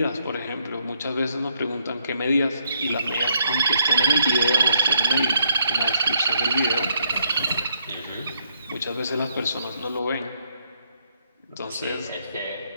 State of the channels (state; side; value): inverted; both; correlation -0.75